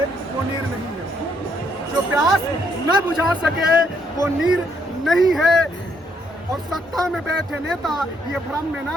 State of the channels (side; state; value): both; normal; correlation 0.72